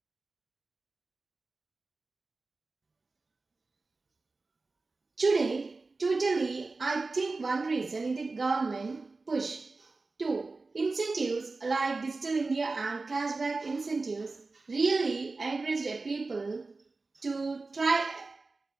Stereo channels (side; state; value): left; quieter; 3.7 dB